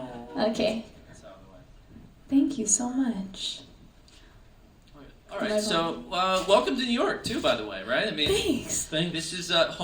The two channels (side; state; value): both; identical; correlation 1.00